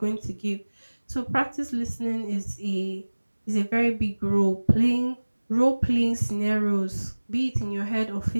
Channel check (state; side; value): inverted; both; correlation -1.00